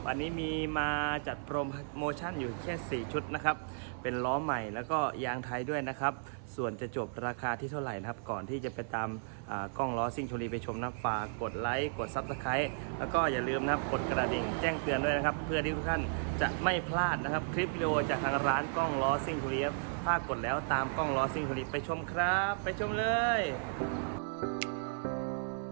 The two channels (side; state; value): left; silent; 55 dB below the other